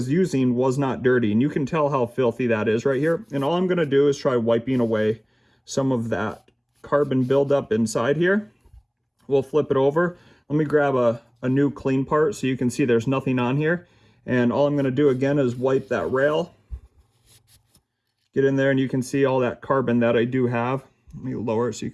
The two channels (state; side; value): identical; both; correlation 1.00